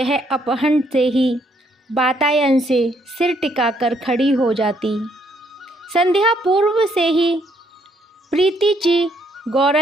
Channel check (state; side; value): normal; both; correlation 0.70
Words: अपहरण से ही वातायन से सिर टिकाकर खड़ी हो जाती। संध्या पूर्व से ही प्रीति जी